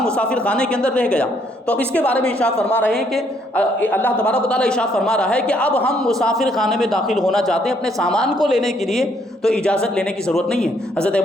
مسافر خانے کے اندر رہ گیا۔ تو اب اس کے بارے میں ارشاد فرما رہے ہیں کہ اللہ تبارک و تعالیٰ ارشاد فرما رہا ہے کہ اب ہم مسافر خانے میں داخل ہونا چاہتے ہیں اپنے سامان کو لینے کے لیے تو اجازت لینے کی ضرورت نہیں ہے۔ حضرت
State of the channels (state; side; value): normal; both; correlation 0.69